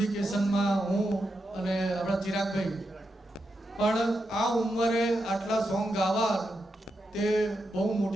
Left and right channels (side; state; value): both; normal; correlation 0.86